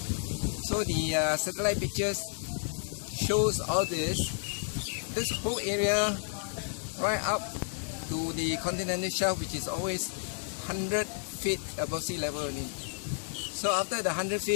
So the satellite pictures shows all this whole area right up to the continental shelf, which is always 100 feet above sea level only. So after the 100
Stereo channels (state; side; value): silent; right; 57 dB below the other